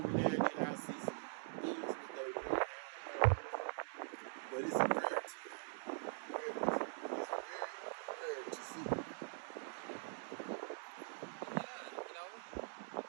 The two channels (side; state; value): left; silent; digital silence